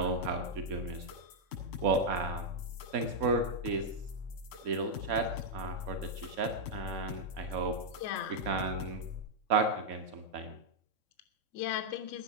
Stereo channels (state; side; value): late; left; 3.6 ms